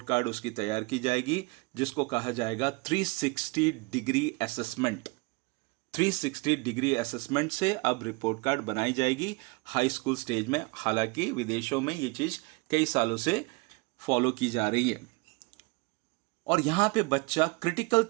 कार्ड उसकी तैयार की जाएगी, जिसको कहा जाएगा 360 डिग्री असेसमेंट। 360 डिग्री असेसमेंट से अब रिपोर्ट कार्ड बनाई जाएगी हाई स्कूल स्टेज में। हालांकि विदेशों में ये चीज़ कई सालों से फॉलो की जा रही है, और यहाँ पे बच्चा क्रिटिकल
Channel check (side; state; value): left; quieter; 27.2 dB